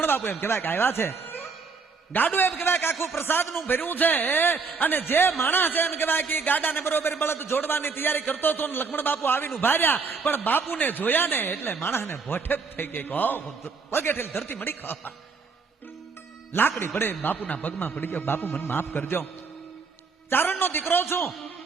બાપુ એમ કહેવાય કે આવ્યા છે. ગાડું એમ કહેવાય કે આખું પ્રસાદનું ભર્યું છે. અને જે માણસ છે એમ કહેવાય કે ગાડાને બરોબર બળદ જોડવાની તૈયારી કરતો હતો ને લક્ષ્મણ બાપુ આવીને ઉભા રહ્યા, પણ બાપુને જોયા ને એટલે માણસને ભોઠે થઈ ગઈ. પગેઠેલ ધરતી મળી ખાવા લાકડી પડે બાપુના પગમાં પડી ગયો. બાપુ મને માફ કરજો, ચારણનો દીકરો છું,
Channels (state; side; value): quieter; left; 4.8 dB